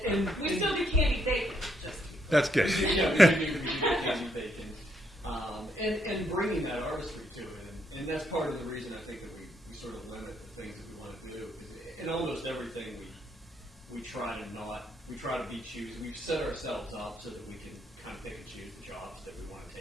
And We still do candy bacon. That's good. Yeah, we do candy bacon, and bringing that artistry to it, and that's part of the reason I think that we sort of limit the things that we want to do, because in almost everything we try to be choosy. We've set ourselves up so that we can kind of pick and choose the jobs that we want to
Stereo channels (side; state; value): both; normal; correlation 0.75